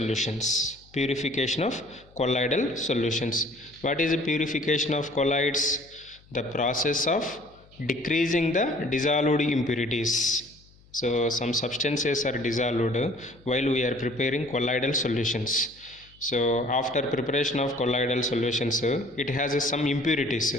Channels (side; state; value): left; noise; hum, 28 dB below the sound